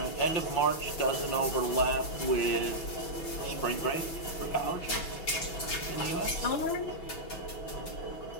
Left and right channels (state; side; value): late; right; 6.0 ms